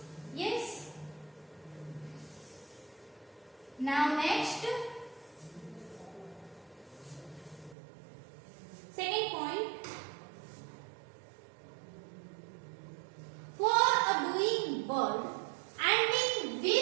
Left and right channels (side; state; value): left; drops out; at 7.8 s